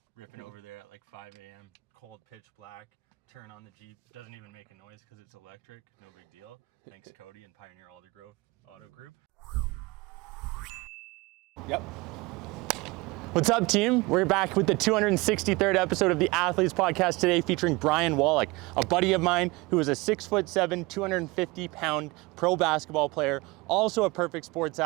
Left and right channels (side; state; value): left; quieter; 23.6 dB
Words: ripping over there at like 5 a.m., cold, pitch black, turn on the Jeep, doesn't even make a noise because it's electric, no big deal. Thanks Cody and Pioneer Aldergrove Auto Group. Yep. What's up, team? We're back with the 263rd episode of the Athletes Podcast today, featuring Brian Wallack, a buddy of mine who is a 6'7", 250-pound pro basketball player, also a perfect sports